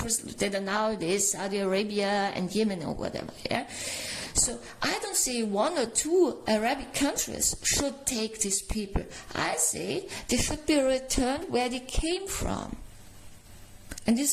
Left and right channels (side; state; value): both; identical; correlation 1.00